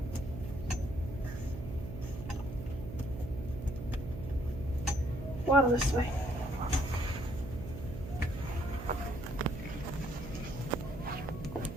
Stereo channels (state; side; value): noise; right; hum, 9 dB below the sound